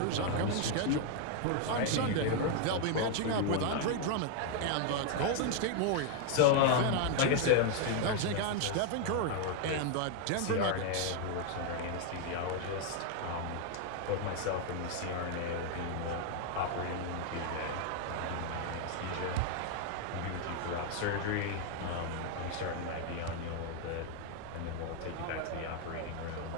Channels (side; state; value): both; different; correlation 0.00